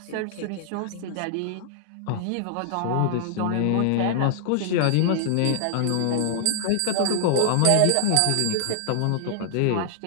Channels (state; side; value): different; both; correlation -0.01